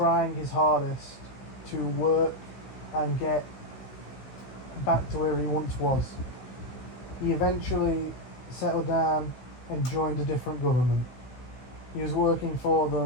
his hardest to work and get back to where he once was. He eventually settled down and joined a different government. He was working for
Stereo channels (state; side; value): late; right; 16 ms